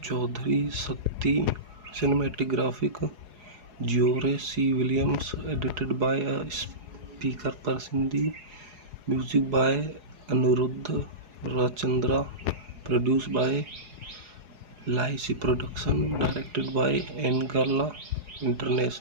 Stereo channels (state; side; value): late; left; 4.8 ms